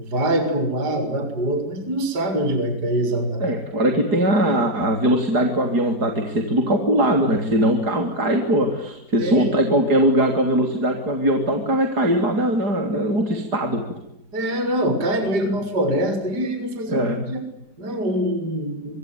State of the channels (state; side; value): late; left; 5.0 ms